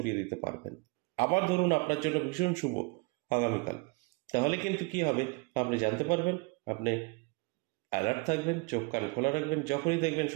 দিতে পারবেন। আবার ধরুন আপনার জন্য ভীষণ শুভ আগামীকাল, তাহলে কিন্তু কি হবে আপনি জানতে পারবেন, আপনি অ্যালার্ট থাকবেন, চোখ কান খোলা রাখবেন। যখনই দেখবেন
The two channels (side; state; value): left; quieter; 26.9 dB